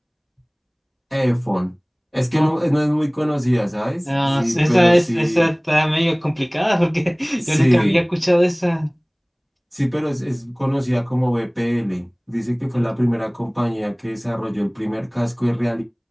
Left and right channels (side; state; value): both; identical; correlation 1.00